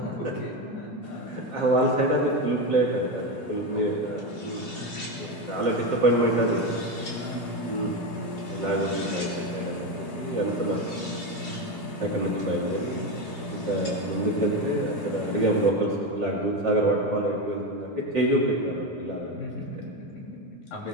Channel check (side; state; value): both; normal; correlation 0.14